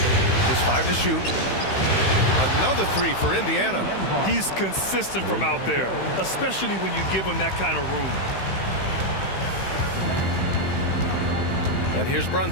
Just 5 to shoot. Another 3 for Indiana. He's consistent from out there, especially when you give him that kind of room. And here's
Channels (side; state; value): right; late; 15 ms